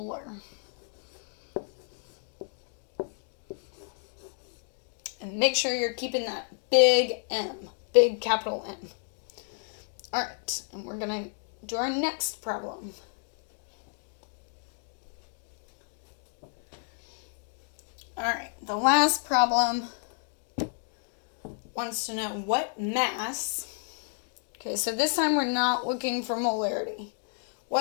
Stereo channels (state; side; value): silent; right; 57 dB below the other